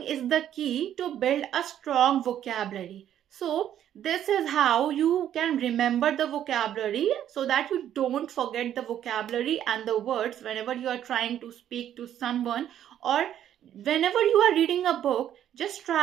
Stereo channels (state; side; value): quieter; left; 10.7 dB